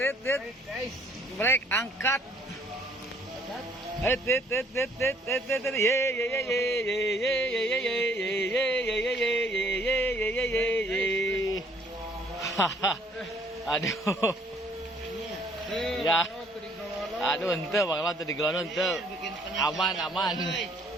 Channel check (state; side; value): normal; both; correlation 0.61